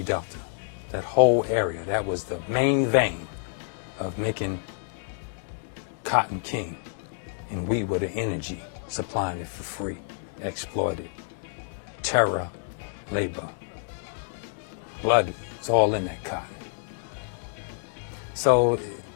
Delta. That whole area, that was the main vein of making cotton king and we were the energy supplying it for free, exploited. Terror, labor, blood, it's all in that cotton. So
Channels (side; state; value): right; silent; digital silence